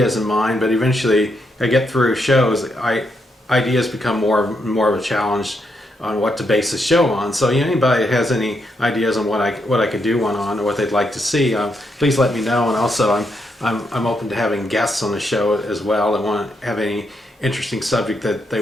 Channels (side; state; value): both; normal; correlation 0.79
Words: in mind, but eventually I get through shows. Ideas become more of a challenge on what to base the show on. So anybody that has any ideas on what I could do one on or what they'd like to see, please let me know. And also I'm open to having guests on the show as well that want to have any interesting subject that they